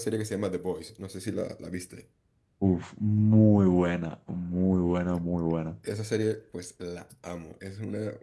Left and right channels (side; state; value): both; identical; correlation 1.00